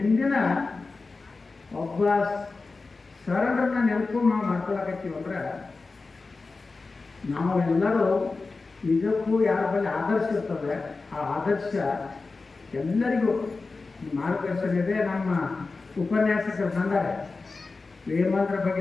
ಒಬ್ಬ ಶರಣರನ್ನ ನೆನಪು ನಾವು ಮಾಡ್ಕೊಳಕತ್ತೀವಿ ಅಂದ್ರೆ ನಾವೆಲ್ಲರೂ ನಿಜಕ್ಕೂ ಯಾರ ಬಳಿ ಆದರ್ಶ ಇರ್ತದೆ ಆ ಆದರ್ಶ ಎಲ್ಲರಿಗೂ ಮಾರ್ಗದರ್ಶನ ಇದೆ. ನಮ್ಮ ಉಪನ್ಯಾಸಕರು ಬಂದರೆ ವೇಮಂತ್ರ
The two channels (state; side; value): quieter; right; 3.9 dB